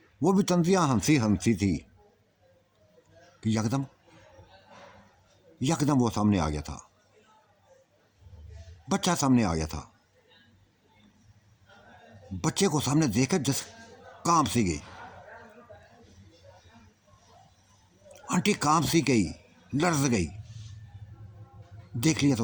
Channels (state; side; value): identical; both; correlation 1.00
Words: वो भी तंजिया हंसी थी कि यकदम वो सामने आ गया था, बच्चा सामने आ गया था। बच्चे को सामने देखकर जस कांप सी गई, आंटी कांप सी गई, लर्ज गई। देख लिया था